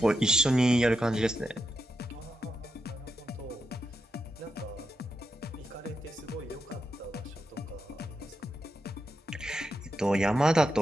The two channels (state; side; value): normal; both; correlation 0.85